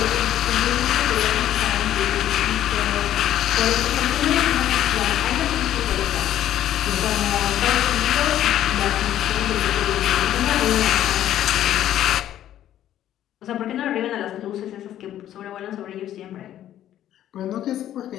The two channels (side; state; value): right; quieter; 11.9 dB